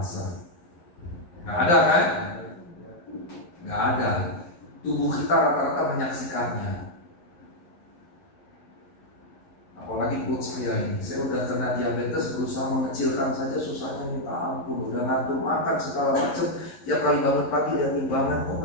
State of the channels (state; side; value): late; right; 11 ms